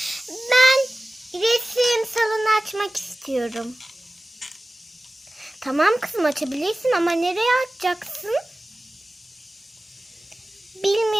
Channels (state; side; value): normal; both; correlation 0.97